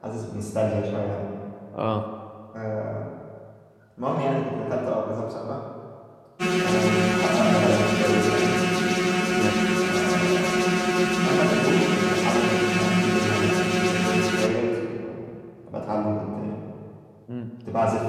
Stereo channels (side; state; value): both; identical; correlation 1.00